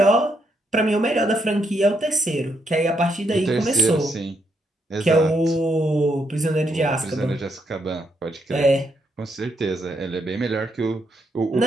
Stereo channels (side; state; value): both; normal; correlation 0.77